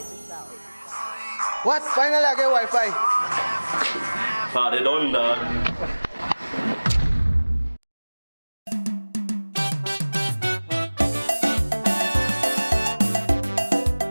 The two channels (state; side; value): inverted; both; correlation -1.00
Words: What? Finally I get Wi-Fi. Party done, dog.